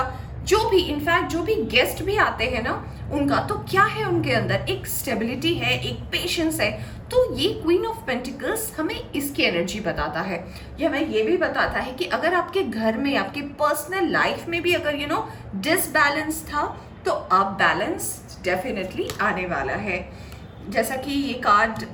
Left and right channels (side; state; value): both; identical; correlation 1.00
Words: जो भी, इनफैक्ट जो भी गेस्ट भी आते हैं ना उनका, तो क्या है उनके अंदर एक स्टेबिलिटी है, एक पेशेंस है। तो ये क्वीन ऑफ पेंटिकल्स हमें इसकी एनर्जी बताता है। यह हमें ये भी बताता है कि अगर आपके घर में, आपके पर्सनल लाइफ में भी अगर डिसबैलेंस था, तो अब बैलेंस डेफिनेटली आने वाला है। जैसा कि ये कार्ड